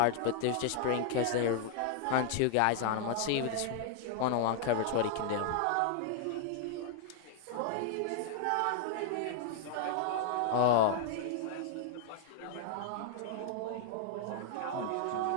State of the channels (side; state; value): both; different; correlation -0.01